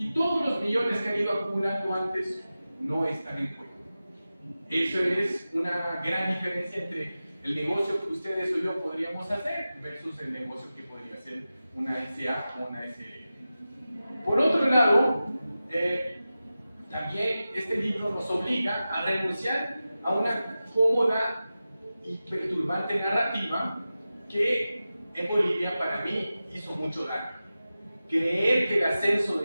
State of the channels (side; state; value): both; inverted; correlation -0.94